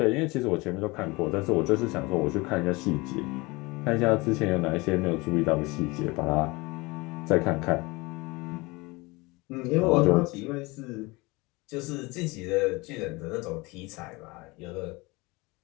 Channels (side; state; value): right; quieter; 24.1 dB